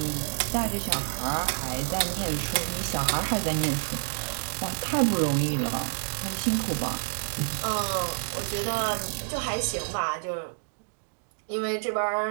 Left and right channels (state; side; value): silent; left; digital silence